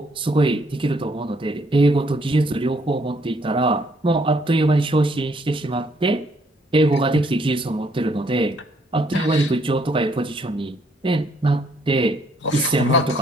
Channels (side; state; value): both; normal; correlation 0.68